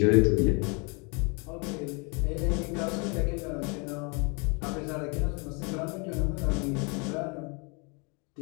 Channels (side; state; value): right; quieter; 32.0 dB